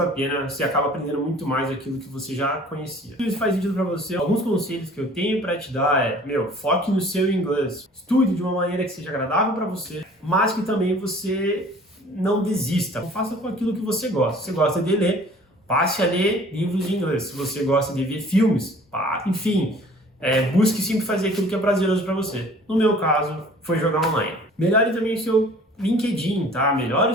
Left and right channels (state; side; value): normal; both; correlation 0.50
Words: pena, você acaba aprendendo muito mais aquilo que você já conhecia. Se isso faz sentido para você, alguns conselhos que eu tenho para te dar foque no seu inglês. Estude de uma maneira que seja agradável para você, mas que também você não desista. Faça com aquilo que você gosta. Se você gosta de ler, passe a ler livros em inglês. Se você gosta de ver filmes, enfim, busque sempre fazer aquilo que é prazeroso para você. No meu caso, foi jogar online. Melhore também o seu LinkedIn, tá? Melhore